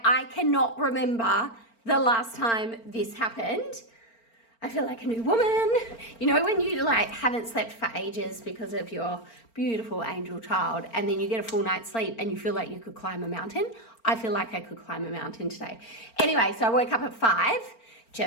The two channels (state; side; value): late; right; 4.4 ms